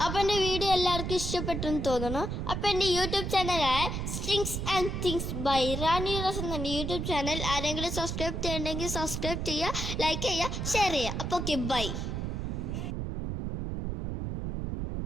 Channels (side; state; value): right; noise; rumble, 3 dB below the sound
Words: അപ്പോൾ എൻ്റെ വീഡിയോ എല്ലാവർക്കും ഇഷ്ടപ്പെട്ടെന്ന് തോന്നുന്നു. അപ്പോൾ എൻ്റെ യൂട്യൂബ് ചാനലായ strings and things by Rani rose എന്ന യൂട്യൂബ് ചാനൽ ആരെങ്കിലും സബ്സ്ക്രൈബ് ചെയ്യണമെങ്കിൽ സബ്സ്ക്രൈബ് ചെയ്യുക, ലൈക്ക് ചെയ്യുക, ഷെയർ ചെയ്യുക. അപ്പോൾ ഓക്കെ, ബൈ.